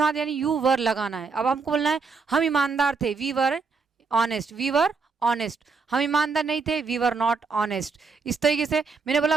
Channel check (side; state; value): left; quieter; 4.8 dB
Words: यानी यू वर लगाना है। अब हमको बोलना है हम ईमानदार थे, we were honest, we were honest. हम ईमानदार नहीं थे, वी वर नॉट ऑनेस्ट। इस तरीके से मैंने बोला